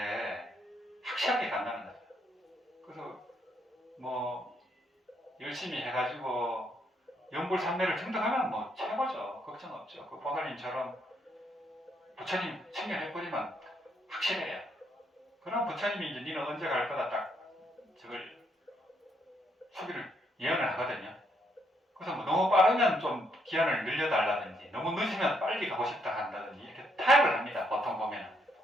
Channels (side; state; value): both; normal; correlation 0.74